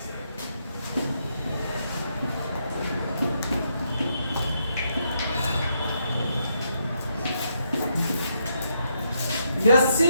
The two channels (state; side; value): inverted; both; correlation -0.78